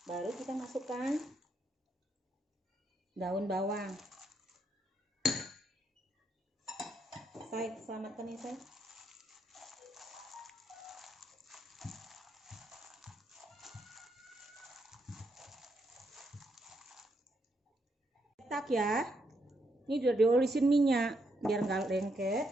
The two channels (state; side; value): normal; both; correlation 0.77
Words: baru kita masukkan daun bawang. Saya selamatkan ya saya. Cetak ya. Ini udah diolisin minyak biar nggak lengket.